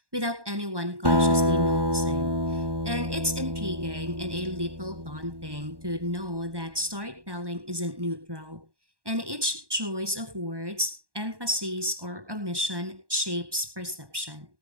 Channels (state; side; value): late; left; 1.1 ms